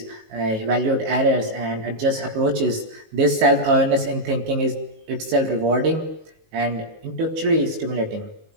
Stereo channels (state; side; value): late; left; 19 ms